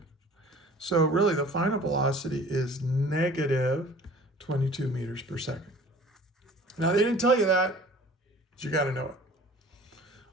So really the final velocity is negative 22 meters per second. Now they didn't tell you that, but you got to know it.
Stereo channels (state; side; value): normal; both; correlation 0.47